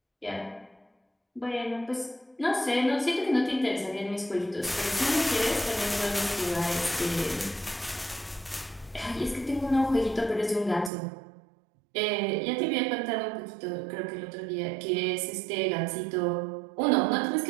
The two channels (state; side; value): drops out; left; at 10.9 s